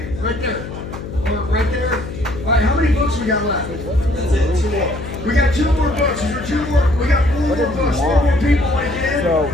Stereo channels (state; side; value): noise; left; hum, 10 dB below the sound